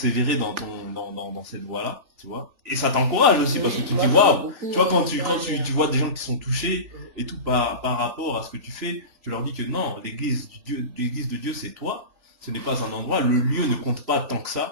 dans cette voie-là, tu vois. Et ça t'encourage aussi, parce que tu te dis, waouh, tu vois, quand tu vois des gens qui sont touchés et tout par rapport à ce que tu fais, tu leur dis que non, l'église de Dieu, c'est toi, ce n'est pas un endroit, le lieu ne compte pas tant que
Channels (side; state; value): left; late; 3.4 ms